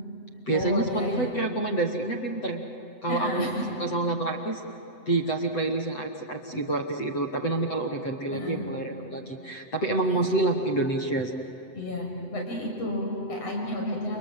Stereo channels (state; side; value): late; right; 7.9 ms